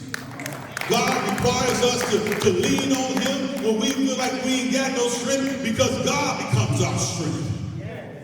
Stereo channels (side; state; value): both; identical; correlation 1.00